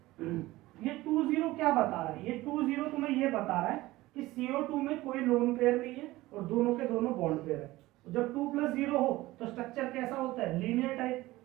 ये 2 0 क्या बता रहा है? ये 2 0 तुम्हें ये बता रहा है कि CO2 में कोई लोन पेयर नहीं है और दोनों के दोनों बॉन्ड पेयर है। जब 2 प्लस 0 हो तो स्ट्रक्चर कैसा होता है? Linear type.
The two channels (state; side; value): quieter; left; 18.2 dB